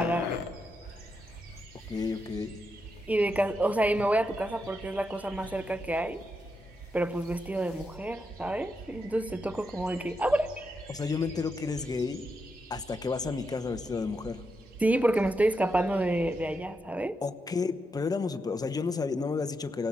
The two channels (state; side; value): normal; both; correlation 0.84